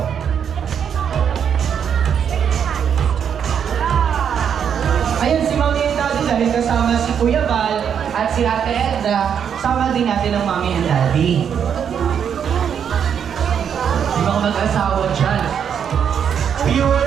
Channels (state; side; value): quieter; left; 8.0 dB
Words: Ayun, si Mami and Daddy dahil kasama si Kuya Val at si Ate Edna, sama din natin ang Mami and Daddy. Yung mga mag-asawa dyan.